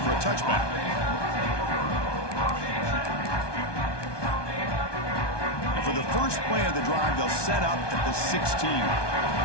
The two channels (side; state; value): right; late; 1.2 ms